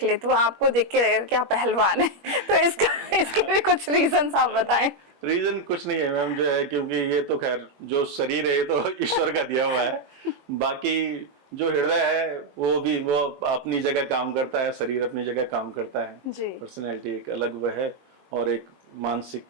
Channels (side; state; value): left; late; 21 ms